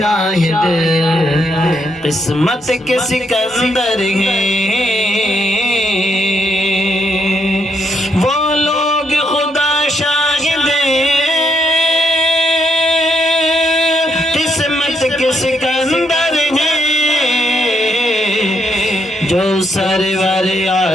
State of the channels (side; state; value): both; normal; correlation 0.76